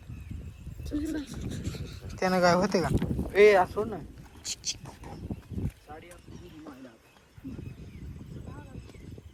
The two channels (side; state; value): both; identical; correlation 1.00